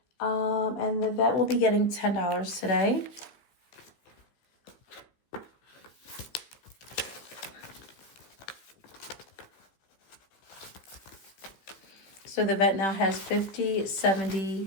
And the vet will be getting $10 today. So the vet now has 50,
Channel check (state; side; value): late; right; 15 ms